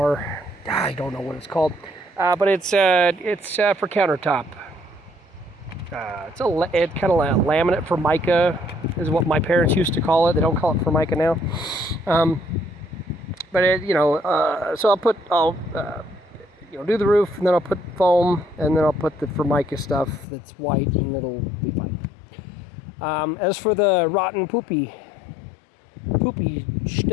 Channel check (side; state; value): right; drops out; at 20.2 s